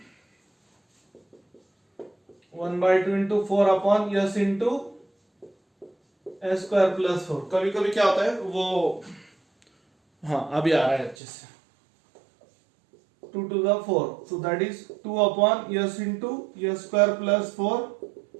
1/2 into 4 upon s into a square plus 4। कभी कभी क्या होता है वो, हाँ अभी आ रहा है अच्छे से, 2 to the 4, so that is 2 upon s into s square plus 4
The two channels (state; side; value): drops out; left; at 11.2 s